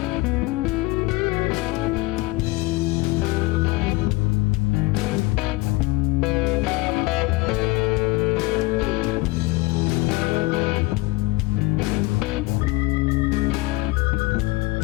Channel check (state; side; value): quieter; right; 21.9 dB